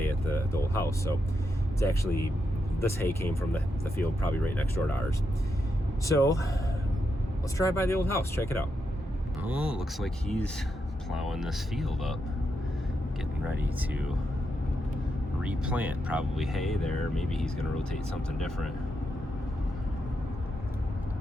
at the old house. So it's actually, this hay came from the field probably right next door to ours. So let's drive by the old house, check it out. Oh, looks like he's plowing this field up, getting ready to replant probably hay there. Maybe he's gonna rotate something different.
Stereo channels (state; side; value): normal; both; correlation 0.84